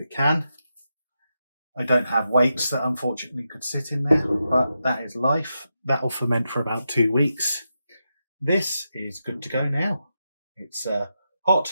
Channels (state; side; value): inverted; both; correlation -0.87